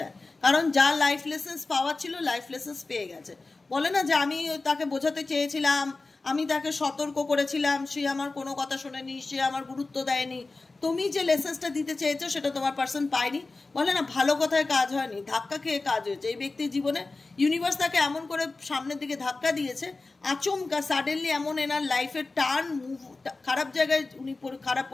কারণ যা লাইফ লেসেন্স পাওয়ার ছিল লাইফ লেসেন্স পেয়ে গেছে। বলে না যে আমি তাকে বোঝাতে চেয়েছিলাম, আমি তাকে সতর্ক করেছিলাম, সে আমার কোনো কথা শোনেনি, সে আমার গুরুত্ব দেয়নি। তুমি যে লেসেন্সটা দিতে চেয়েছো সেটা তোমার পার্সন পায়নি। বলে না ভালো কথায় কাজ হয়নি, ধাক্কা খেয়ে কাজ হয়েছে। এই ব্যক্তির জীবনে ইউনিভার্স তাকে এমন করে সামনের দিকে ধাক্কা দিয়েছে, আচমকা সাডেনলি এমন এনার লাইফের টার্ন মুভ, খারাপ জায়গায় উনি খারাপ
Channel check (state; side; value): quieter; right; 3.5 dB